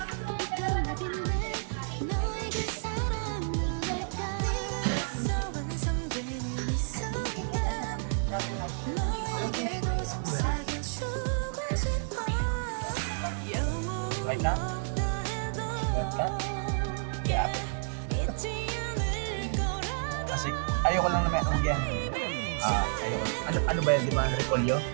Like that? Like that? Yeah. Kasi ayoko lang naman yan. Ayoko. Ano ba yan, di ba? Repolyo?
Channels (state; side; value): silent; left; digital silence